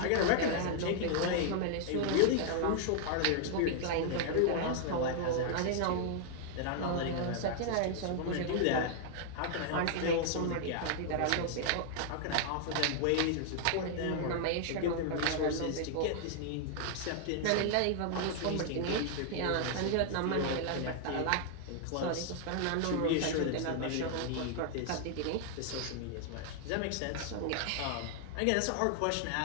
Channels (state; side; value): different; both; correlation 0.00